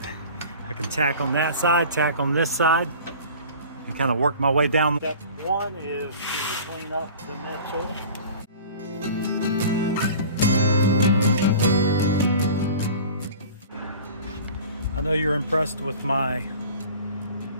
I can tack on that side, tack on this side, and kind of work my way down. Step one is to clean up the metal. I know you're impressed with my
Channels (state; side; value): inverted; both; correlation -0.42